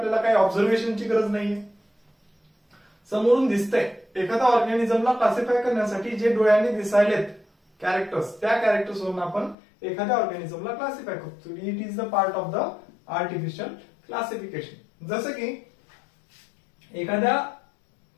काही ऑब्झर्वेशनची गरज नाहीये. समोरून दिसतंय एखाद्या ऑर्गॅनिझमला क्लासिफाय करण्यासाठी जे डोळ्यांनी दिसायलेत कॅरेक्टर्स, त्या कॅरेक्टर्स वरून आपण एखाद्या ऑर्गॅनिझमला क्लासिफाय करतो. It is the part of the artificial classification. जसं की एखाद्या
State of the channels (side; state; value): right; drops out; at 9.6 s